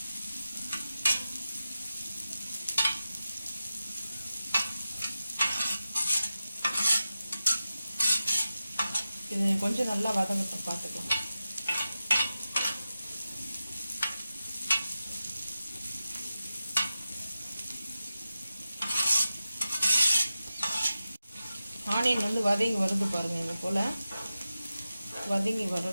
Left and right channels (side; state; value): both; inverted; correlation -0.92